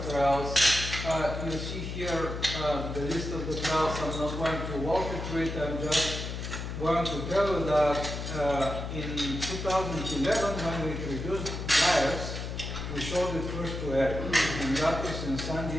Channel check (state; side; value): noise; left; hum, 5 dB below the sound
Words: trials. You see here the list of the trials. I'm not going to walk you through it. I'm just going to tell you that in 2011, when we introduced dryers, we showed it first to Eric. And that was in San